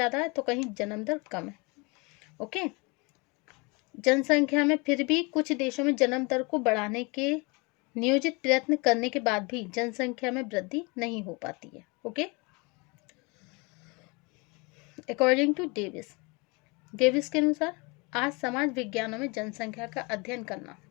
है तो कहीं जन्म दर कम है. ओके, जनसंख्या में फिर भी कुछ देशों में जन्म दर को बढ़ाने के नियोजित प्रयत्न करने के बाद भी जनसंख्या में वृद्धि नहीं हो पाती है. ओके, अकॉर्डिंग टू डेविस के अनुसार आज समाज विज्ञानों में जनसंख्या का अध्ययन करना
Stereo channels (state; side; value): quieter; right; 28.5 dB